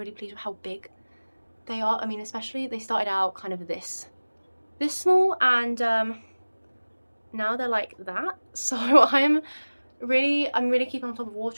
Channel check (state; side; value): inverted; both; correlation -1.00